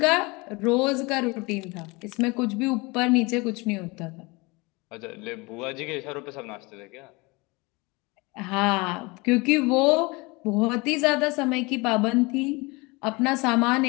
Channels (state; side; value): quieter; right; 25.5 dB